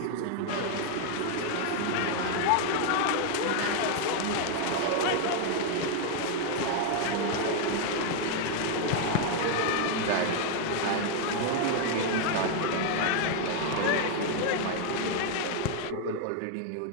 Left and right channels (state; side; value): different; both; correlation 0.00